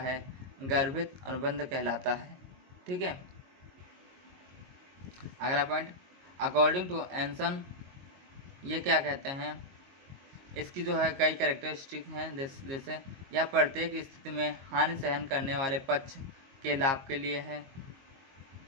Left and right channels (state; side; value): late; left; 22 ms